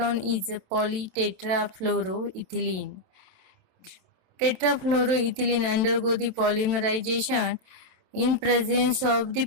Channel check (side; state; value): left; late; 27 ms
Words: is a polytetrafluoroethylene. Tetrafluoroethylene undergo the polymerization in presence of the